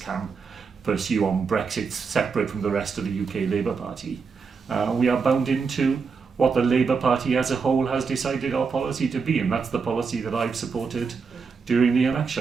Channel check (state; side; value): quieter; left; 5.3 dB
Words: pursue on Brexit separate from the rest of the UK Labour Party. We are bound into what the Labour Party as a whole has decided our policy to be, and that's the policy that I've supported during the